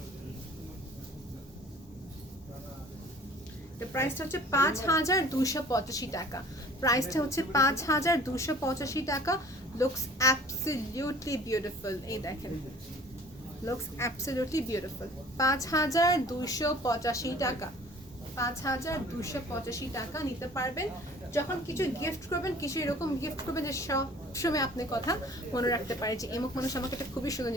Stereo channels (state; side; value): normal; both; correlation 0.48